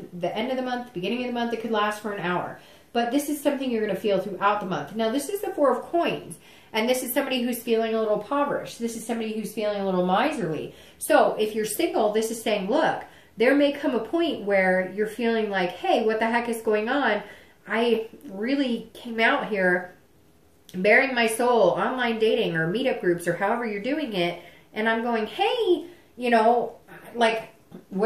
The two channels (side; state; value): both; identical; correlation 1.00